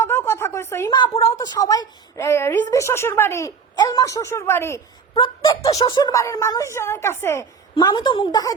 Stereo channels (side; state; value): left; quieter; 5.9 dB